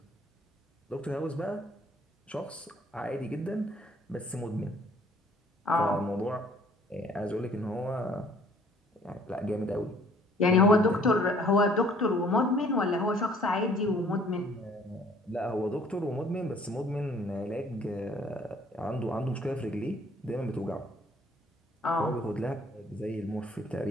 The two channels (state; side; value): normal; both; correlation 0.58